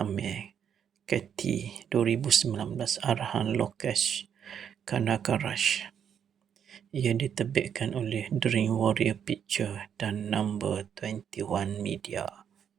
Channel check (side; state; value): left; quieter; 8.4 dB